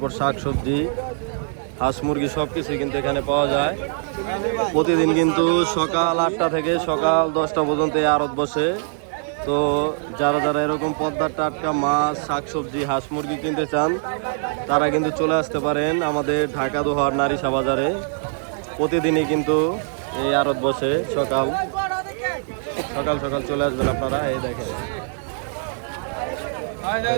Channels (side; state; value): left; silent; 63 dB below the other